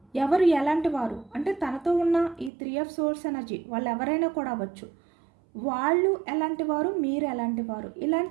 ఎవరు ఎలాంటి వారు అంటే తనతో ఉన్న ఈ 3 ఆఫ్ సోర్స్ ఎనర్జీ వాళ్ళు ఎవరైనా కూడా అవ్వచ్చు. వాళ్ళు ఎలాంటి వారు, మీరు ఎలాంటి వారు,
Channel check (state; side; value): drops out; left; at 2.5 s